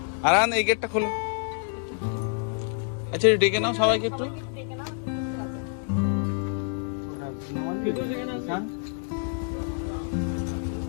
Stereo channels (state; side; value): silent; right; 60 dB below the other